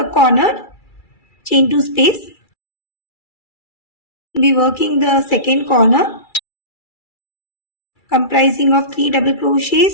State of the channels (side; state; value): right; late; 2.3 ms